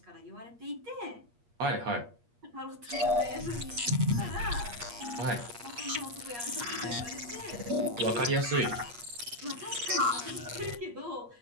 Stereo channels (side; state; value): left; late; 8.4 ms